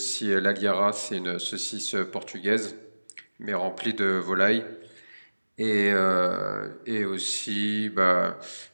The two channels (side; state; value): both; inverted; correlation -1.00